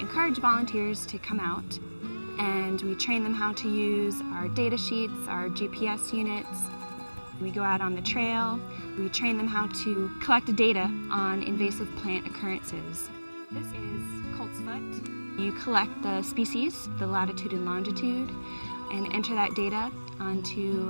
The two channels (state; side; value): inverted; both; correlation -1.00